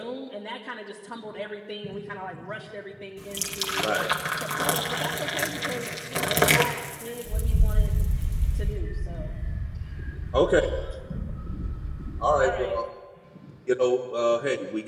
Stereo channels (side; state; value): both; identical; correlation 1.00